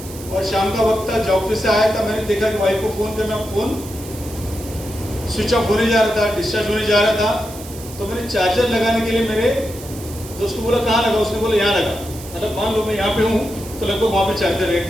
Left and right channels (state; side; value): noise; right; hiss, 15 dB below the sound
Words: और शाम का वक्त था, जॉब से आया था। मैंने देखा कि वाइफ को फोन करना, फोन स्विच ऑफ होने जा रहा था, डिस्चार्ज होने जा रहा था। तो मैंने चार्जर लगाने के लिए मेरे दोस्त को बोला कहाँ लगा? उसने बोला यहाँ लगा। मतलब मान लो मैं यहाँ पे हूँ तो लगभग वहाँ पे